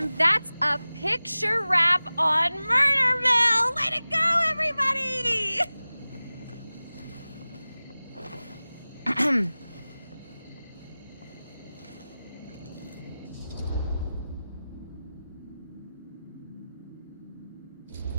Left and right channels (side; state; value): both; inverted; correlation -0.97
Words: that's a picture wrap on Murder Mill! Way to go, everybody!